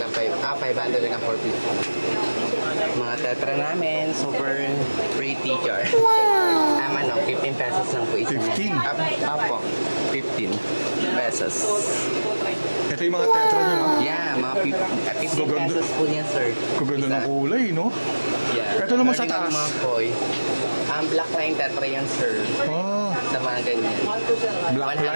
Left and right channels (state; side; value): inverted; both; correlation -1.00